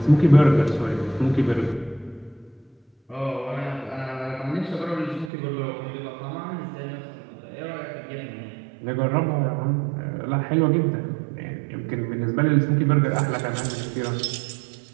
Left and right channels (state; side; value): drops out; left; at 5.3 s